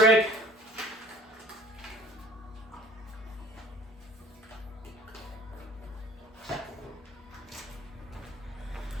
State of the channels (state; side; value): normal; both; correlation 0.49